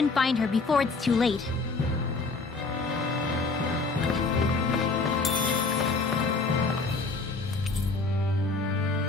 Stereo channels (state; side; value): quieter; right; 3.9 dB